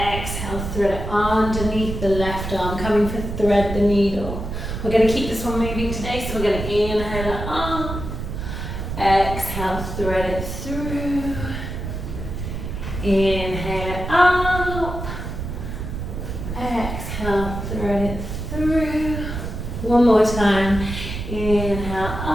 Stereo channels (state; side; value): noise; right; rumble, 6 dB below the sound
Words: exhale, thread it underneath the left arm, coming for thread the needle. We're going to keep this one moving today, so we're going to inhale it up, exhale, thread it through, inhale it up, exhale, thread it through. One more time. Inhale